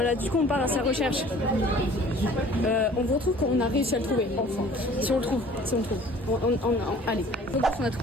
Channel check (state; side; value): normal; both; correlation 0.50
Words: du coup, on part à sa recherche. On vous retrouve quand on a réussi à le trouver, enfin. Si on le trouve, si on le trouve. Allez, on a